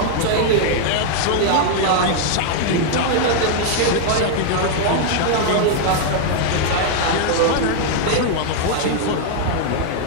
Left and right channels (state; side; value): different; both; correlation 0.00